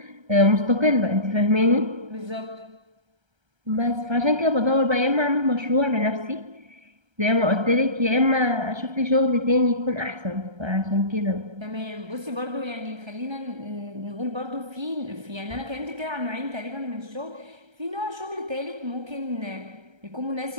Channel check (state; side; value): late; left; 1.3 ms